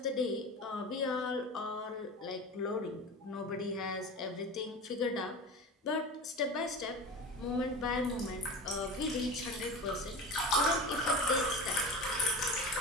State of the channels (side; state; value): both; normal; correlation 0.31